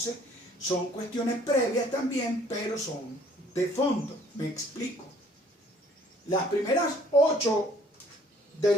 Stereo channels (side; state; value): both; normal; correlation 0.58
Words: son cuestiones previas también, pero son de fondo. Me explico. Las primeras 8 del